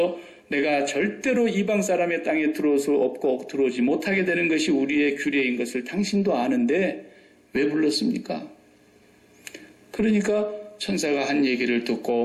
내가 절대로 이방 사람의 땅에 들어올 없고 들어오지 못하게 되는 것이 우리의 규례인 것을 당신도 아는데 왜 불렀습니까? 그러니까 천사가 한 얘기를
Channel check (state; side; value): identical; both; correlation 1.00